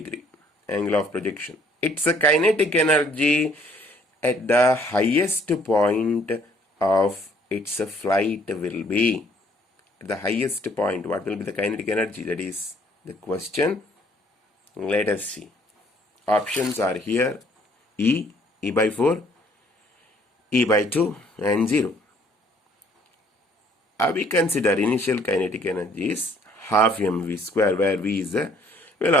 Angle of projection. Its kinetic energy at the highest point of its flight will be. At the highest point, what will be the kinetic energy? That is the question. Let us see. Options are here. E by 4, E by 2 and 0. We consider initial kinetic energy is half mv square, where v is the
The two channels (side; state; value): both; normal; correlation 0.61